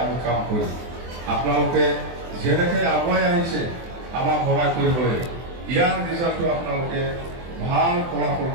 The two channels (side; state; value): left; late; 24 ms